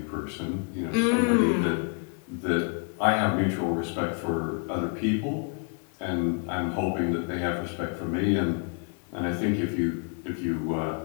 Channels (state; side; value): quieter; right; 39.8 dB